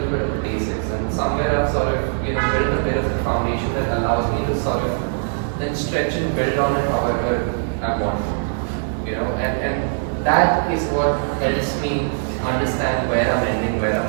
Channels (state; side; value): silent; left; 64 dB below the other